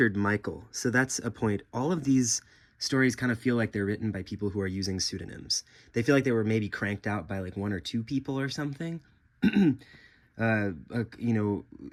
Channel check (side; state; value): both; identical; correlation 1.00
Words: Michael. So that's a point. All of these stories kind of feel like they're written by people who are using pseudonyms. They feel like they were maybe cranked out by like 1 or 2 people or something. And